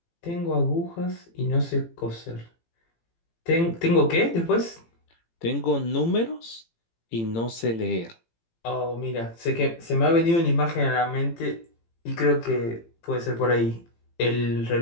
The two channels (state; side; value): late; right; 18 ms